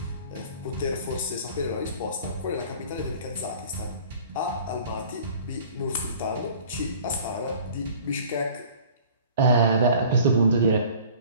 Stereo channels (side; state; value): both; inverted; correlation -0.48